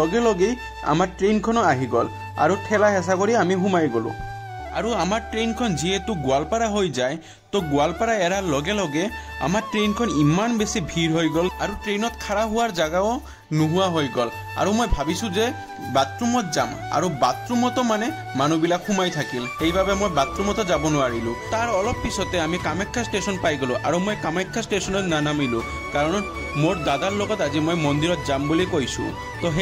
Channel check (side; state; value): both; identical; correlation 1.00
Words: লগে আমাৰ ট্ৰেইনখনো আহি গল আৰু ঠেলা হেঁচা কৰি আমি সোমাই গলো আৰু আমাৰ ট্ৰেইনখন যেহেতু গোৱালপাৰা হৈ যায় তো গোৱালপাৰা এৰাৰ লগে লগে আমাৰ ট্ৰেইনখন ইমান বেছি ভিৰ হৈ গল আৰু ট্ৰেইনত খাৰা হোৱাৰ জাগাও নোহোৱা হৈ গল আৰু মই ভাবিছো যে বাথৰুমত যাম আৰু বাথৰুমতো মানে মানুহবিলাক সোমাই থাকিল সেইভাবে মই বাথৰুমতো যাব নোৱাৰিলো তাৰ অলপ পিছতে আমি কামাখ্যা ষ্টেচন পাই গলো আৰু মই কামাখ্যা ষ্টেচনত নানামিলো কাৰণ মোৰ দাদাৰ লগত আজি মই মন্দিৰত যাম বুলি কৈছো তো